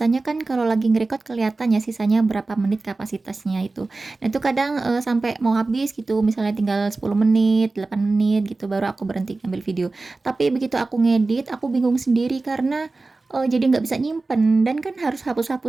kan kalau lagi ngerecord kelihatan ya sisanya berapa menit kapasitasnya itu. Nah itu kadang sampai mau habis gitu, misalnya tinggal 10 menit, 8 menit gitu baru aku berhenti ngambil video. Tapi begitu aku ngedit, aku bingung sendiri karena jadi nggak bisa nyimpen dan kan harus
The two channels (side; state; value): left; quieter; 3.5 dB